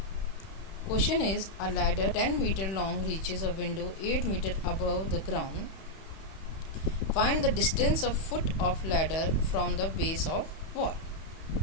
Question is, a ladder 10 meter long reaches a window 8 meter above the ground. Find the distance of foot of ladder from the base of wall.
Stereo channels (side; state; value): right; late; 31 ms